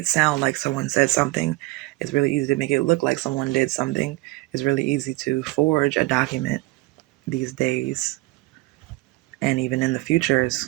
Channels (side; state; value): left; quieter; 20.8 dB